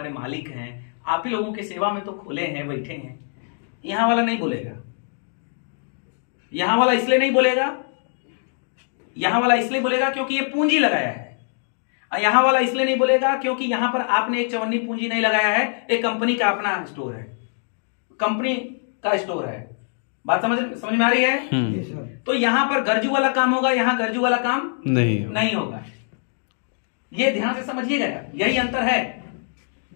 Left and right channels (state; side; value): silent; right; 63 dB below the other